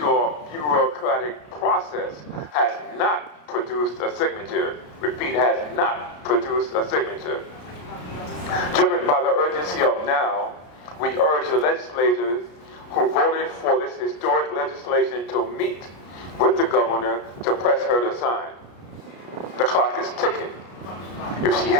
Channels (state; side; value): late; right; 33 ms